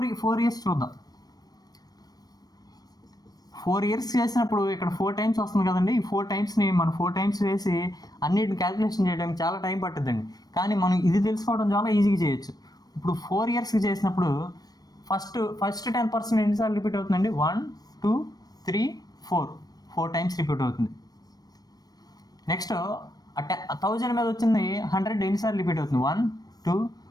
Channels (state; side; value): late; right; 0.19 ms